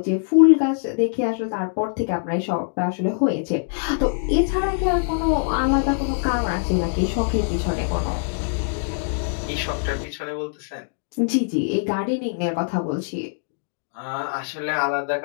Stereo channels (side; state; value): right; silent; digital silence